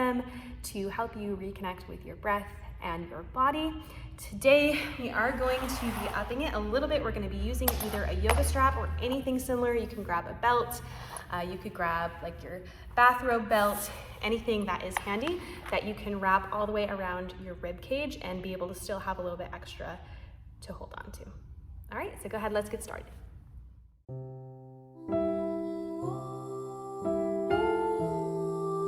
to help you reconnect with your breath and your body. Today, we are going to be upping it a little bit. We're going to be using either a yoga strap or anything similar. You can grab a belt. You could grab like your bathrobe belt, anything that is handy that you can wrap all the way around your rib cage and be able to still have a little bit extra to hold on to. All right, so go ahead, let's get started. All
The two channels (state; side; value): identical; both; correlation 1.00